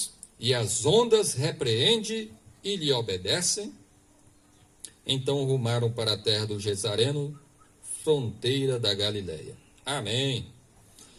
e às ondas repreende e lhe obedecem? Então rumaram para a terra do Gesareno, fronteira da Galileia. Amém.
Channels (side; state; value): both; identical; correlation 1.00